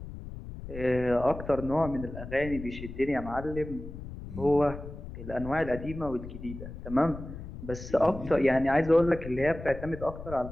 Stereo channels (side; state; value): left; noise; rumble, 11 dB below the sound